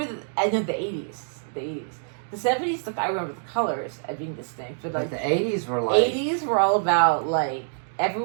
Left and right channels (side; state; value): left; silent; digital silence